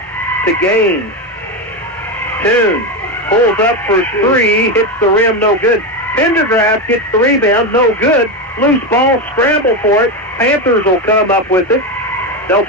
to Gaines. Toon pulls up for 3. Hits the rim, no good. Pendergrass gets the rebound, no good. Loose ball, scramble for it. Panthers will come up with it. They'll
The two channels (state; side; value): normal; both; correlation 0.13